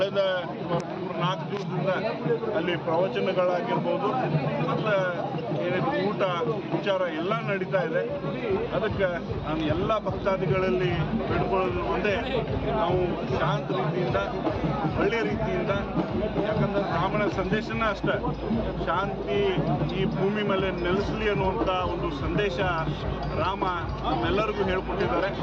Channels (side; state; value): both; identical; correlation 1.00